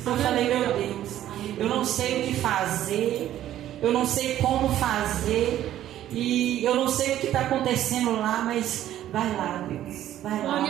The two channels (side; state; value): left; quieter; 12.4 dB